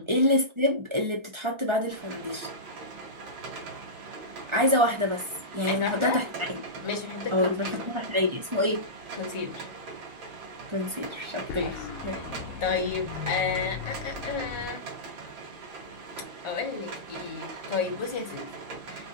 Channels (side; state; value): left; late; 1.4 ms